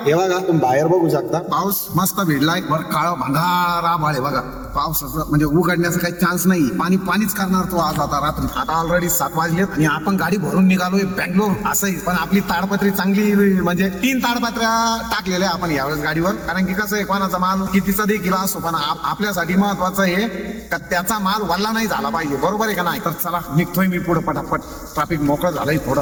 हे बघा, तुम्ही बाहेर बघू शकता पाऊस मस्त भिडलाय. वर काळ भंगार आभाळ आहे बघा. पावसाचं म्हणजे उघडण्याचा काही चान्स नाही. पाणी पाणीच करणार तो आज. आता रात्री आता ऑलरेडी 7 वाजलेत आणि आपण गाडी भरून निघालोय बँगलोर. असंही पण आपली ताडपत्री चांगली, म्हणजे 3 ताडपत्र्या टाकलेल्या आपण यावेळेस गाडीवर. कारण की कसं आहे, कोणाचा माल कितीचा देखील असो, पण आपल्यासाठी महत्वाचं आहे का त्याचा माल वल्ला नाही झाला पाहिजे. बरोबर आहे का नाही? तर चला निघतोय मी पुढे पटापट. ट्रॅफिक मोकळं झालंय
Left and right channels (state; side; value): identical; both; correlation 1.00